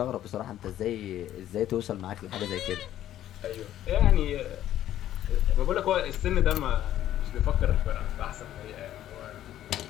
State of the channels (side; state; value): right; quieter; 12.3 dB